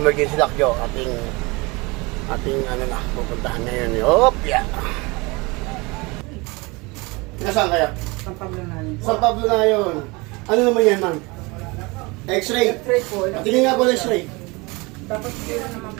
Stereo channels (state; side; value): quieter; left; 25.7 dB